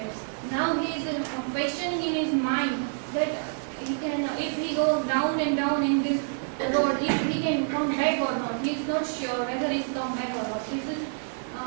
Now he is questioning in his mind that he can, if he goes down and down in this road, if he can come back or not. He is not sure whether he is come back or not. This is,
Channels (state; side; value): silent; left; digital silence